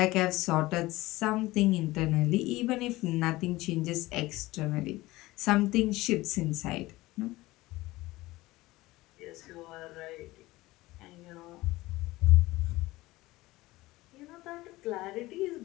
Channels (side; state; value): right; quieter; 19.1 dB